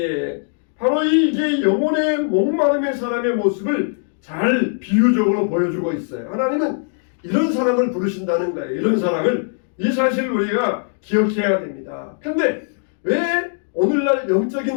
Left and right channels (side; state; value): right; silent; 61 dB below the other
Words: 바로 이게 영혼의 목마름의 사람의 모습을 잘 비유적으로 보여주고 있어요. 하나님은 이런 사람을 부르신다는 거예요. 이런 사람을, 이 사실을 우리가 기억해야 됩니다. 근데 왜 오늘날